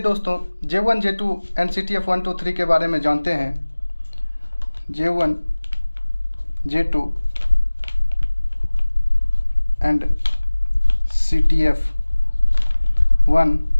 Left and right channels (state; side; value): inverted; both; correlation -1.00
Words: दोस्तों, J1 J2 एंड CTF 1 2 3 के बारे में जानते हैं। J1 J2 एंड CTF 1